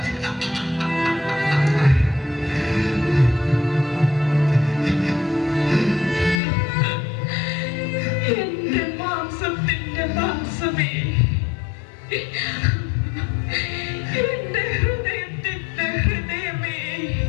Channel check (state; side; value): drops out; right; at 6.4 s